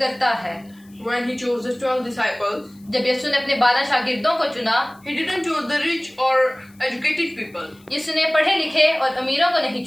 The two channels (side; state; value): left; noise; hiss, 30 dB below the sound